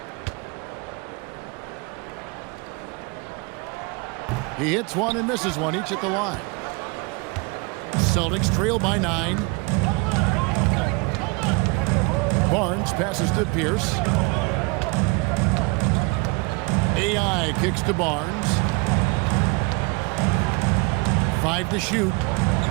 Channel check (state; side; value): quieter; left; 28.9 dB